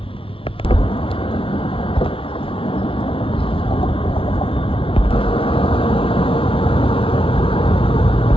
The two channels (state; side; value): late; right; 0.26 ms